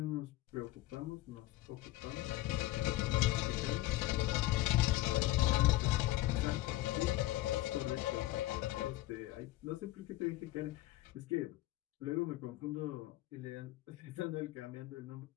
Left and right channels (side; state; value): right; quieter; 17.2 dB